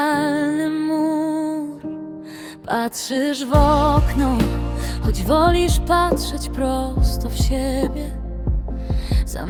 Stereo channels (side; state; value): both; identical; correlation 1.00